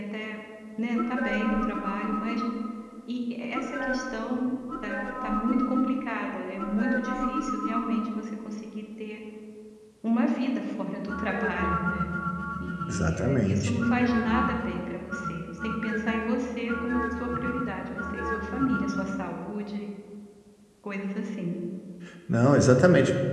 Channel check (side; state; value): both; identical; correlation 1.00